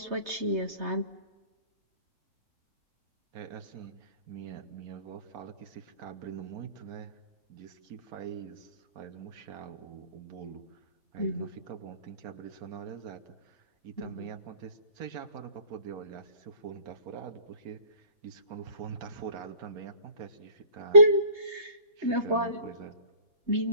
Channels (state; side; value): late; left; 3.3 ms